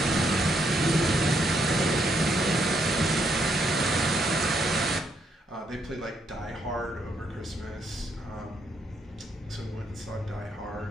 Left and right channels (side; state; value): both; normal; correlation 0.75